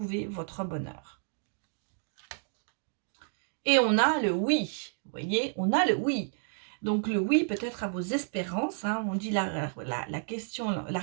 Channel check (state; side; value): silent; left; 57 dB below the other